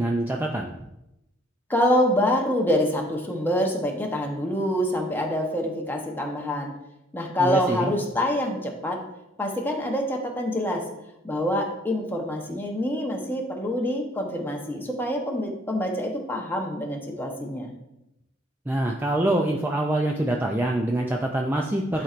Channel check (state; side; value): normal; both; correlation 0.62